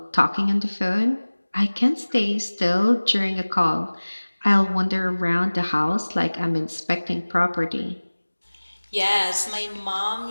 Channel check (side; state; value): both; inverted; correlation -1.00